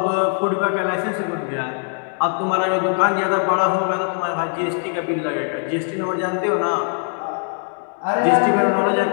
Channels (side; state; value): right; silent; 56 dB below the other